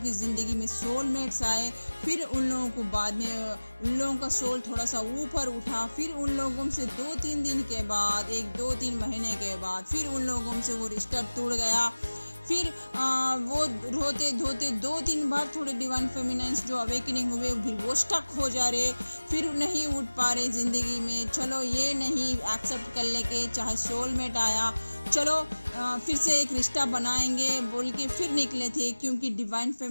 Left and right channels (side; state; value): both; inverted; correlation -1.00